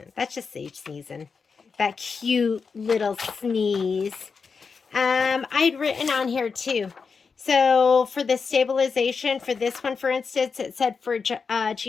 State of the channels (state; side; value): quieter; right; 5.3 dB